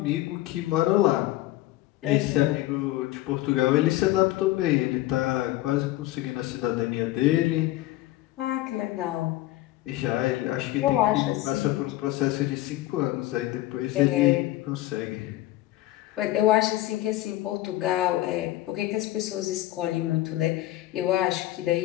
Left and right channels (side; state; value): right; quieter; 16.2 dB